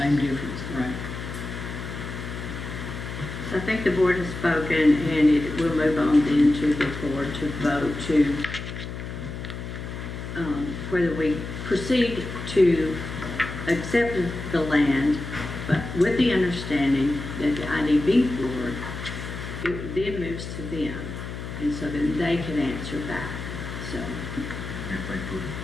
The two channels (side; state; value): left; noise; hum, 8 dB below the sound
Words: difference, right? So I think the board has spoken, and we'll move on then to the board to vote to whether we proceed to accept the land, but with the understanding that the IDB board, it then moves to them, and so then they can answer back. So If they put